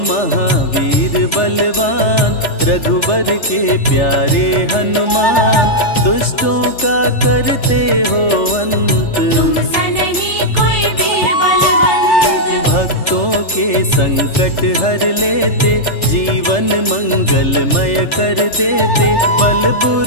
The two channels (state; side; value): late; right; 3.4 ms